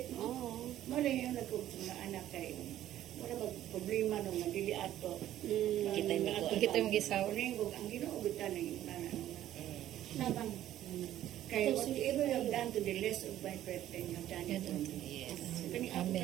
no? Oo. Mali yung nagkog sa mga anak kay wala mag problema nung nagdili ato. Kita yung mag- Kita yung gisaw. Ang ginoogutan na yung nabang. Kaya whatever you have done to the less of my brethren, you have done it to me. Yes. So, kani ako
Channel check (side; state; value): left; quieter; 12.7 dB